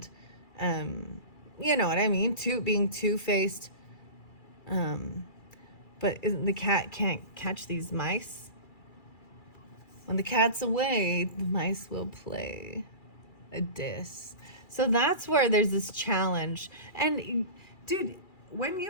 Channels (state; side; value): late; right; 2.3 ms